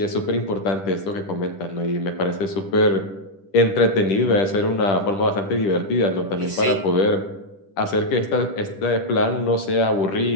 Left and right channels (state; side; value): late; right; 10 ms